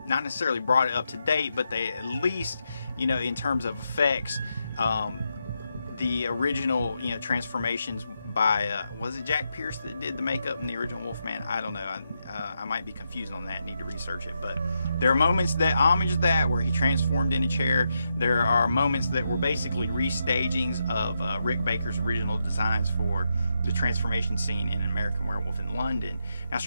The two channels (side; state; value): both; inverted; correlation -0.83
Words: not necessarily brought it up to date, but they at least in terms of effects, the original transformations by was it Jack Pierce that did the makeup in the original Wolfman? I don't know. I might be confused on that. Need to research it. But there are moments that homage that where he transformed in a chair. There are moments that were basically restagings of Rick Baker's original designs for the transformation scene in An American Werewolf in London. Now,